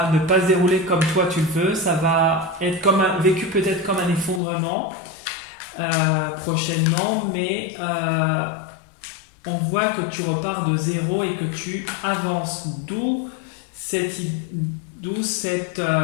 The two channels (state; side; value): drops out; right; at 4.4 s